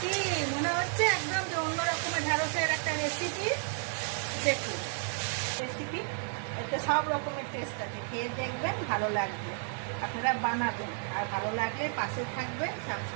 কি মনে হচ্ছে একদম যে অন্য রকমের ঢ্যাঁড়সের একটা রেসিপি। দেখুন রেসিপি, এতে সব রকমের টেস্ট আছে, খেয়ে দেখবেন ভালো লাগবে। আপনারা বানাবেন, আর ভালো লাগলে পাশে থাকবেন,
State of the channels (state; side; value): silent; left; 56 dB below the other